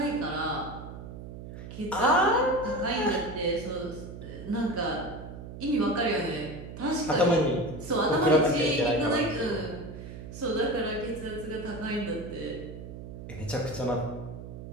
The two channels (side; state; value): right; noise; hum, 11 dB below the sound